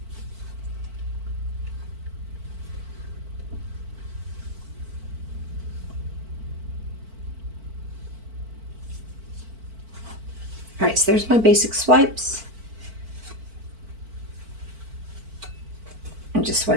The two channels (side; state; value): left; late; 4.5 ms